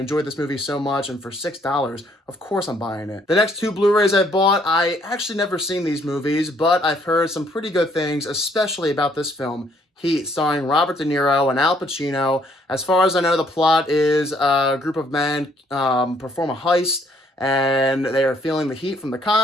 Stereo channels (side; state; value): both; normal; correlation 0.66